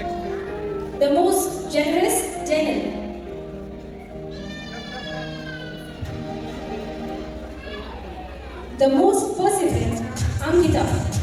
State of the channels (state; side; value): identical; both; correlation 1.00